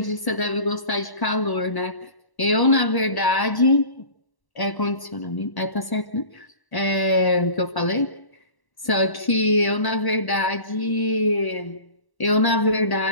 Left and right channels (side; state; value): right; late; 1.1 ms